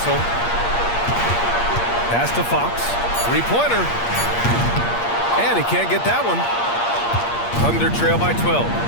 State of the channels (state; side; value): late; right; 8.5 ms